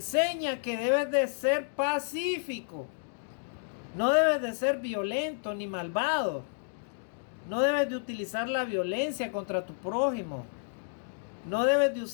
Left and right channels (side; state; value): right; silent; digital silence